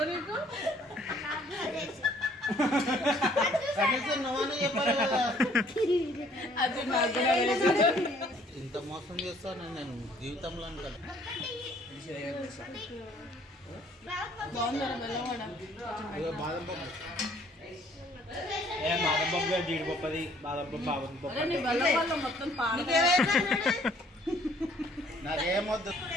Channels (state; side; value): normal; both; correlation 0.60